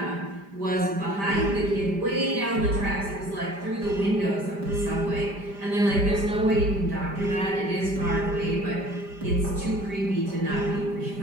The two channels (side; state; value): left; late; 5.0 ms